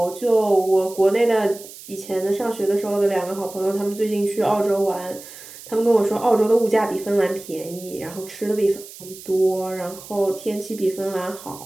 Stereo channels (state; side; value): noise; right; hiss, 16 dB below the sound